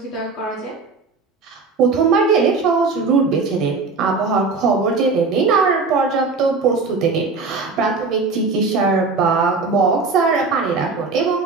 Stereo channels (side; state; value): left; quieter; 4.2 dB